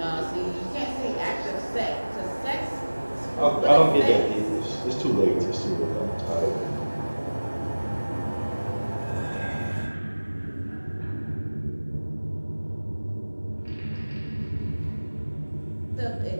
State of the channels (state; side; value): inverted; both; correlation -1.00